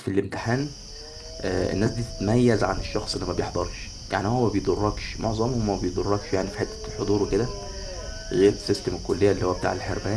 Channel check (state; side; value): identical; both; correlation 1.00